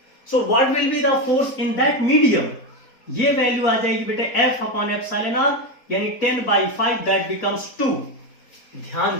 सो what will be the force in that medium, ये वैल्यू आ जाएगी बेटे F अपॉन एप्सिलॉन आर यानी 10/5, दैट बिकम्स 2। ध्यान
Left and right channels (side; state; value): right; late; 4.1 ms